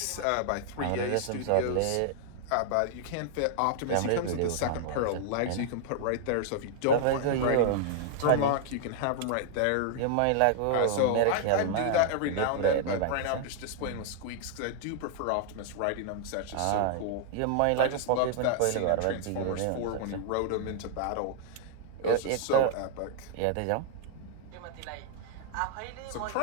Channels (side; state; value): both; different; correlation 0.00